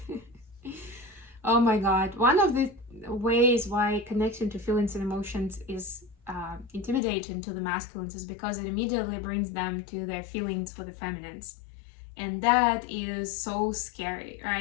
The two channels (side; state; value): right; drops out; at 7.0 s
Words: Oh my God. One of the ways why connection to feelings and emotions is intimidating to the masculines is because it immediately brings them to their feelings for the feminines. And that is so scary,